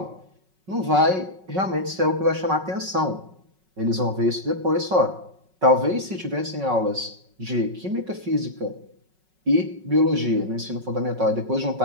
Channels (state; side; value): late; left; 5.4 ms